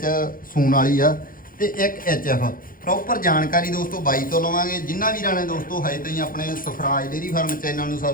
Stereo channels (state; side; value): late; right; 0.41 ms